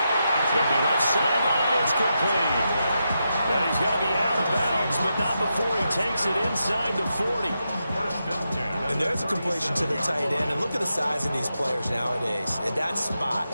It's going to be left sideline. It's complete. Now he's got to be out of bounds, but not before he takes it inside the 40. And there's a completion to the tight end. And look at the size of these players nowadays. At that spot,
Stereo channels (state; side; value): inverted; both; correlation -0.86